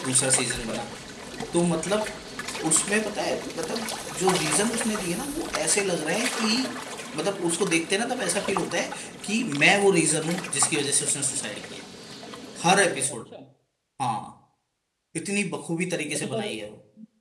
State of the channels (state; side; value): identical; both; correlation 1.00